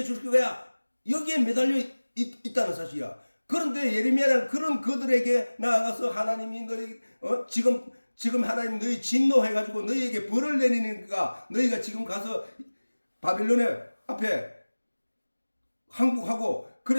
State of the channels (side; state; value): both; inverted; correlation -1.00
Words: 거야. 여기에 매달려 있다는 사실이야. 그런데 예레미야는 그런 그들에게 나아가서 하나님이 너희 지금 하나님 너희 진노해가지고 너희에게 벌을 내리니까 너희가 지금 가서 바빌론의 앞에 항복하고